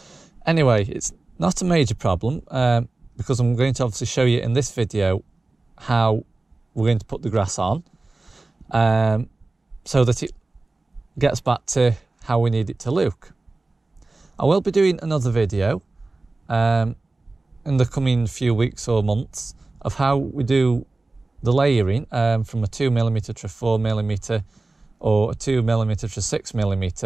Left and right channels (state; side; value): quieter; left; 3.2 dB